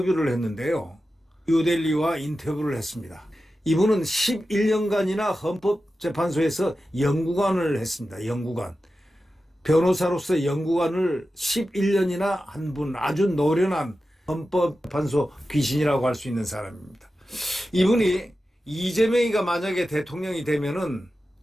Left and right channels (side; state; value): both; normal; correlation 0.92